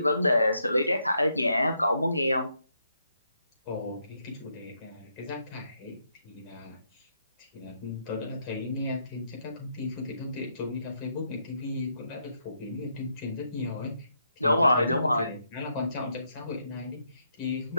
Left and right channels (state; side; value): inverted; both; correlation -0.78